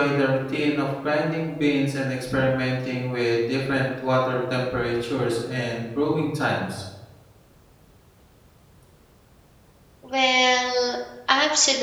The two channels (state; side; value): identical; both; correlation 1.00